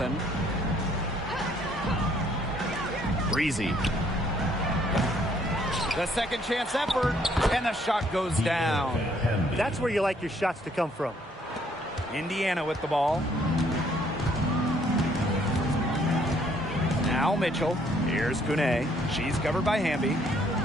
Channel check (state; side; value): normal; both; correlation 0.65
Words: Breezy. The second chance effort, and the shot goes down. That's where you like your shots to come from. Indiana with the ball. Now Mitchell. Here's Kune. She's covered by Hamby.